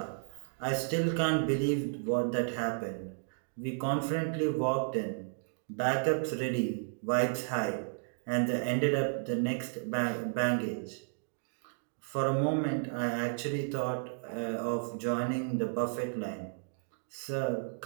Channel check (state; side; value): silent; left; digital silence